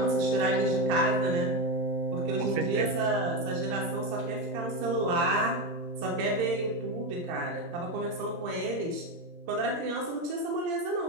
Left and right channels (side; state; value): left; late; 18 ms